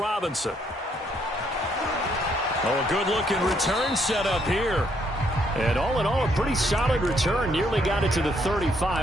Oh, a good-looking return set up here. And all in all, a pretty solid return. Nearly got it to the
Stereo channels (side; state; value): both; normal; correlation 0.71